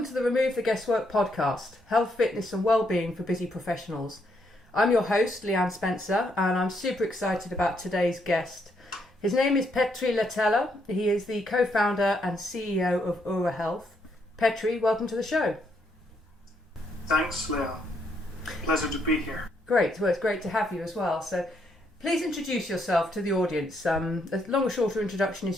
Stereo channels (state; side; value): normal; both; correlation 0.75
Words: to the Remove the Guesswork podcast, health, fitness and well-being for busy professionals. I'm your host, Leanne Spencer, and I'm super excited about today's guest. His name is Petteri Lahtela. He is the co-founder and CEO of OURA Health. Petteri, welcome to the show. Thanks, Leanne. Pleasure to be here. Great. Well, it's great to have you as well. So please introduce yourself to the audience. As long or shorter introduction